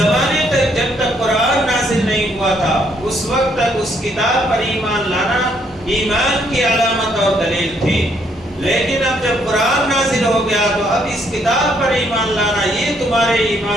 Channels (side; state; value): both; normal; correlation 0.70